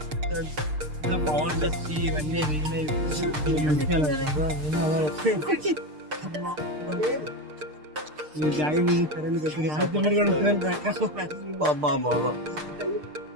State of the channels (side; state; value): left; late; 6.6 ms